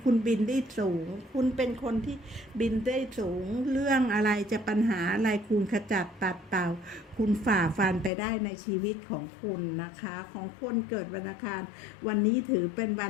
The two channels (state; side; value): drops out; right; at 8.1 s